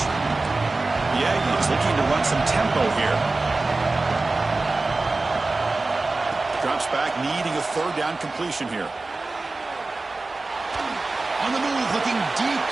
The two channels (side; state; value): left; quieter; 3.4 dB